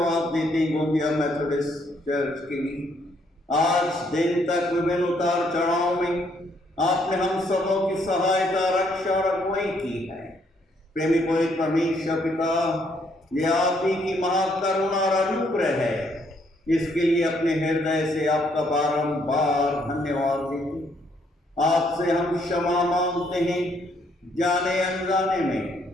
देते हैं गोंदिया मेथोडिस्ट चर्च के लिए। आज दिन तक विभिन्न उतार चढ़ाव में आपने हम सबों की सहायता, रक्षा और अगुवाई की है। प्रेमी पवित्र परमेश्वर पिता, ये आप ही की महाकरुणा और अनुग्रह है, इसके लिए अपने हृदय से आपका बारंबार धन्यवाद देते। आपसे हम क्षमा मांगते हैं, जाने अनजाने में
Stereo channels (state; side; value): normal; both; correlation 0.70